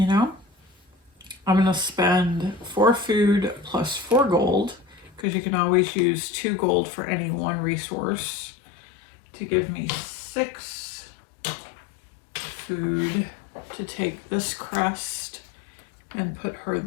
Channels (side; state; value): right; drops out; at 5.2 s